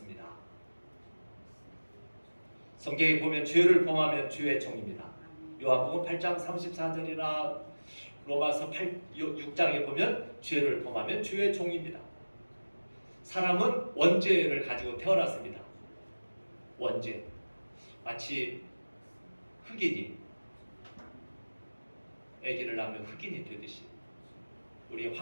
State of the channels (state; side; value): inverted; both; correlation -1.00